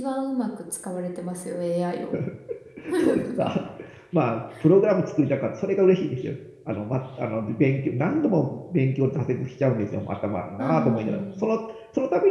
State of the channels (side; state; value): both; identical; correlation 1.00